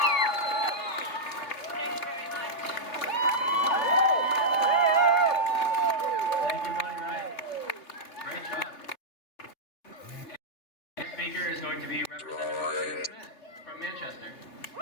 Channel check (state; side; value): late; right; 3.8 ms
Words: Thank you, Bonnie Wright. Great job. Next speaker is going to be Representative Smith from Manchester.